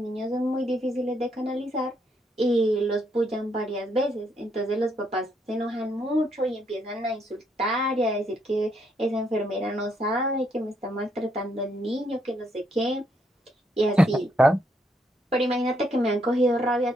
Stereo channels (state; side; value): normal; both; correlation 0.74